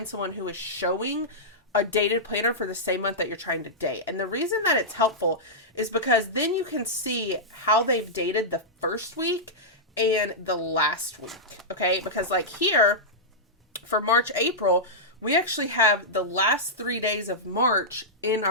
someone who is showing a dated planner for the same month that you're trying to date. And the reason that it's helpful is because then you can see how they've dated the first week and the last week, okay? Because like here, for March, April, we actually have the last 3 days of March in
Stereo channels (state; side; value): normal; both; correlation -0.11